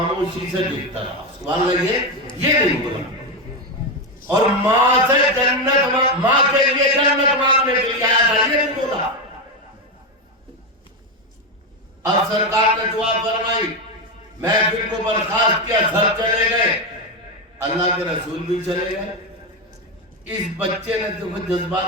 سے دیکھتا رہا۔ سبحان اللہ، یہ نہیں بولا، اور ماں سے جنت، ماں کے لیے جنت مانگنے کے لیے آیا تھا، یہ نہیں بولا۔ اب سرکار نے دعا فرمائی، محفل کو برخاست کیا، سب چلے گئے، اللہ کے رسول بھی چلے گئے۔ اس بچے نے تو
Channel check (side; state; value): both; normal; correlation 0.10